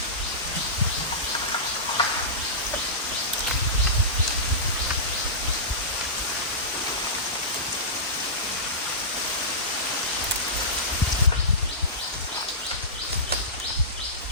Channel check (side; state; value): both; normal; correlation -0.19